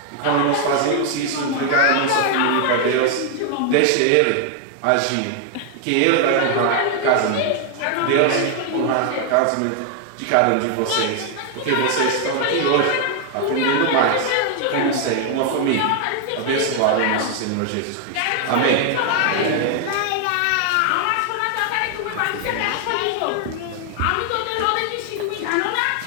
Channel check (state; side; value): different; both; correlation 0.00